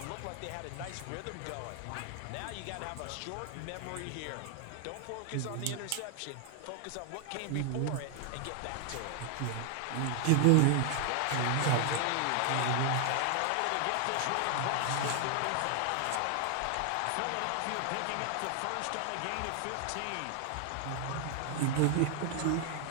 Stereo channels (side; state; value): both; different; correlation 0.00